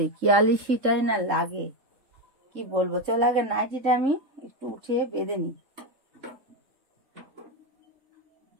কি আলিশিটাই না লাগে, কি বলবো। চল আগে নাইটিটা আমি একটু উঠিয়ে বেঁধে নিই,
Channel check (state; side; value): late; left; 3.7 ms